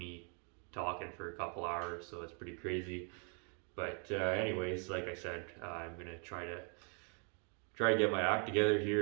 talking for a couple hours, so it's pretty crazy. But anyways, like I said, I'm gonna try to get my act together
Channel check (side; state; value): left; quieter; 38.8 dB